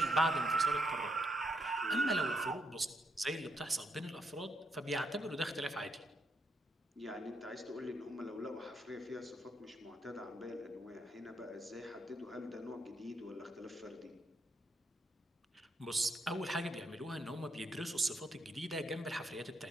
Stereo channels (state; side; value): normal; both; correlation 0.77